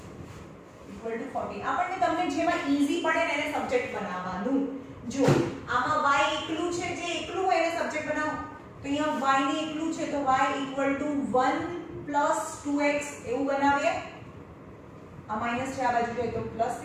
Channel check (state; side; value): identical; both; correlation 1.00